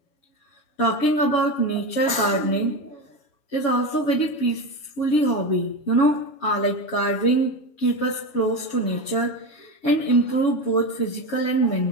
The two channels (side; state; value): right; late; 7.2 ms